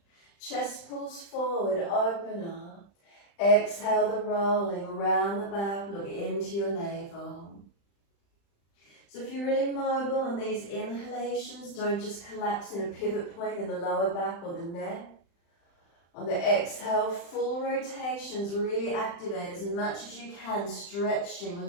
Chest pulls forward, open up. Exhale, the rolling around the back, look into your navel. So if you're really mobile on these inhalations, don't just collapse in a pivot point in the lower back or the neck. On the exhale, full rotations, really activate as much as you can,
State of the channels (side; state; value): right; late; 35 ms